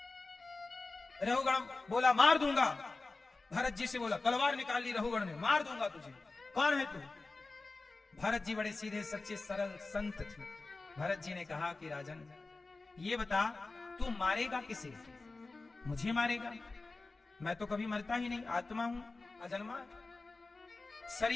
रहुगण बोला, मार दूंगा। भरत जी से बोला, तलवार निकाल ली रहुगण ने, मार दूंगा तुझे, कौन है तू। भरत जी बड़े सीधे सच्चे सरल संत थे। भरत जी ने कहा कि राजन ये बता, तू मारेगा किसे। मुझे मारेगा, मैं तो कभी मरता ही नहीं, आत्मा हूं, अजन्मा।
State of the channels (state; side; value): quieter; right; 3.5 dB